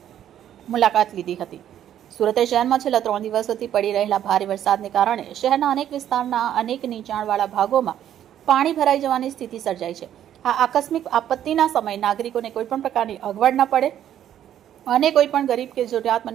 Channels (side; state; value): left; quieter; 10.8 dB